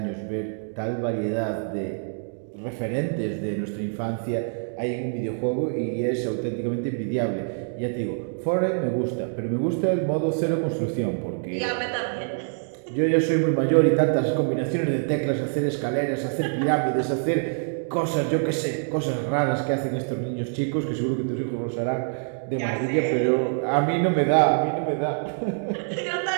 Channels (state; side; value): silent; left; digital silence